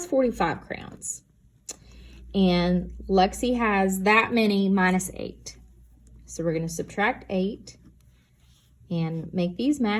45 crayons. And Lexi has that many minus 8. So we're going to subtract 8 and make these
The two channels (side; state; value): both; identical; correlation 1.00